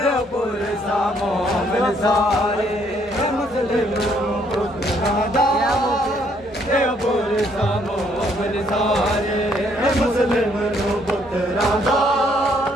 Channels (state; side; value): normal; both; correlation 0.68